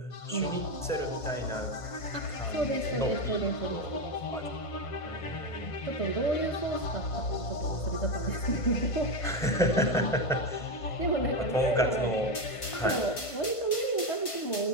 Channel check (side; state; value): right; late; 1.5 ms